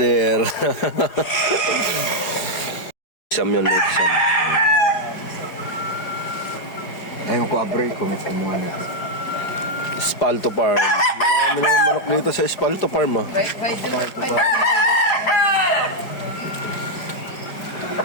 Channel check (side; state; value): right; late; 4.9 ms